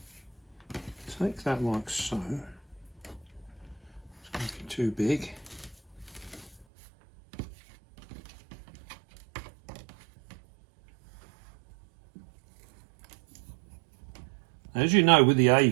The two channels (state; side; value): drops out; left; at 6.7 s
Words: take that like so. It's going to be too big. As you know, with the